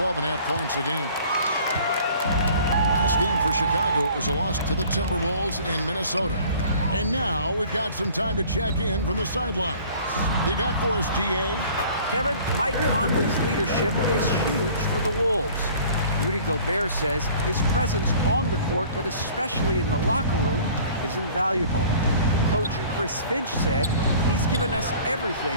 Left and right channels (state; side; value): inverted; both; correlation -0.49